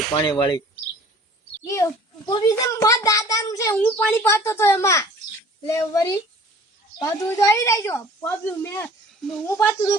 પાણી વાળી પોપી છે મારા દાદાનું છે હું પાણી પાતો તો એમાં લે વરી પાતું તો આવી જાય છો પોપી હું પાતું તો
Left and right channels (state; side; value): normal; both; correlation 0.49